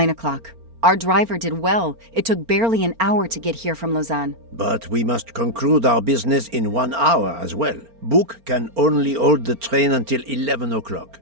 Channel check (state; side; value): late; left; 4.4 ms